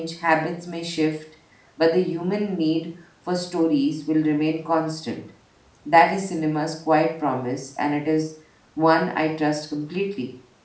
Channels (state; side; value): identical; both; correlation 1.00